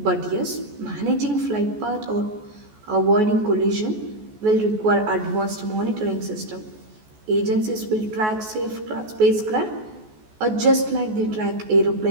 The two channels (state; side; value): late; left; 14 ms